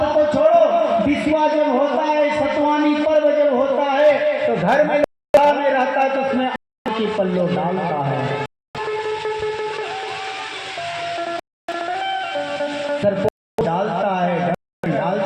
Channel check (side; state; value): both; identical; correlation 1.00